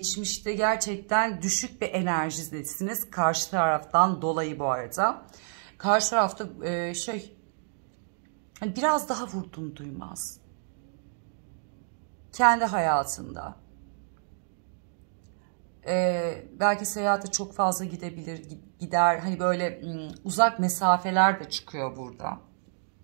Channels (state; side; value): silent; left; digital silence